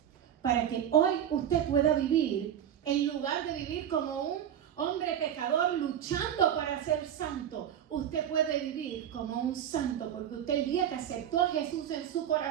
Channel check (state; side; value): quieter; left; 9.8 dB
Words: Para que hoy usted pueda vivir, en lugar de vivir como un hombre pecador luchando para ser santo, usted puede vivir como un santo, porque usted el día que aceptó a Jesús en su